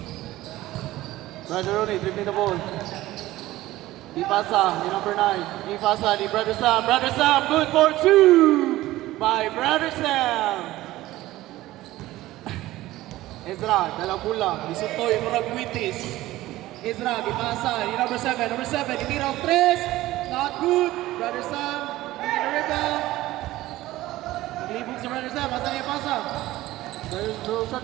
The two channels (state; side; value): quieter; left; 16.5 dB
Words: Brother Ronnie, dribbling the ball. Ipasa ni number 9. Ipasa ni Brother Sam. Brother Sam, good for 2! By Brother Sam. Ezra, dalang bola. Isutoy, murag Witis. Ezra, ipasa. Ni number 7. Number 7, itira ang 3. Not good. Brother Sam, in the rebound. Naglibog si Brother Sam. Asa niya ipasa? Brother